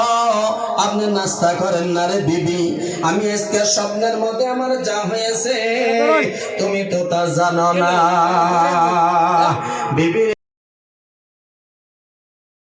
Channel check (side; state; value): both; identical; correlation 1.00